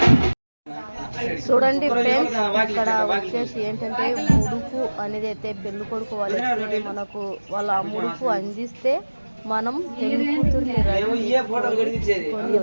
చూడండి ఫ్రెండ్స్, ఇక్కడ వచ్చేసి ఏంటంటే ముడుపు అనేది అయితే పెళ్లి కొడుకు వాళ్ళకి మనకు వాళ్ళ ముడుపు అందిస్తే మనం పెళ్లి కూతుర్ని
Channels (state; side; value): inverted; both; correlation -1.00